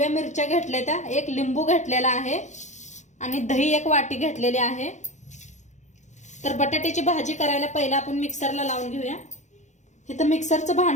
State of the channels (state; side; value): late; right; 0.34 ms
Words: मिरच्या घेतल्या त्या, एक लिंबू घेतलेला आहे आणि दही 1 वाटी घेतलेली आहे। तर बटाट्याची भाजी करायला पहिला आपण मिक्सरला लावून घेऊया। इथं मिक्सरचं